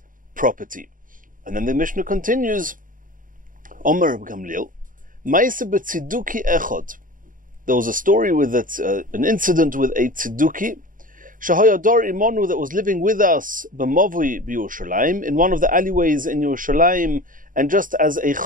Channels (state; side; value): late; left; 0.39 ms